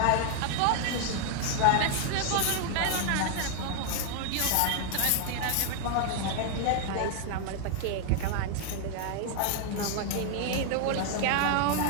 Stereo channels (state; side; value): different; both; correlation 0.00